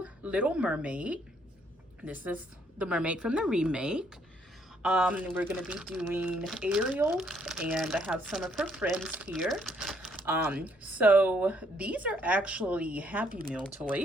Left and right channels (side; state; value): both; normal; correlation 0.69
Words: Little Mermaid. This is the mermaid from the remake. We're going to be doing Ariel, and I have some of her friends here. So these are actually Happy Meal